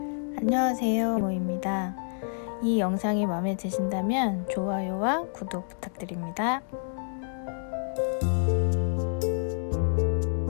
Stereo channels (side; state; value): right; silent; digital silence